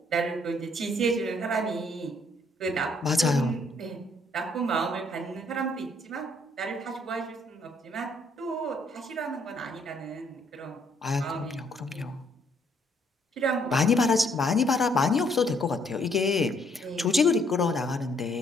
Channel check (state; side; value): normal; both; correlation 0.68